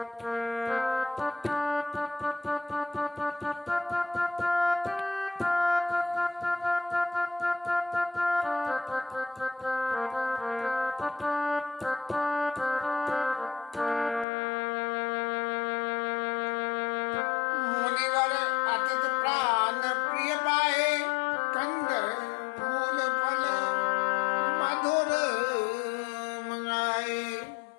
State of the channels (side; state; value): right; drops out; at 14.2 s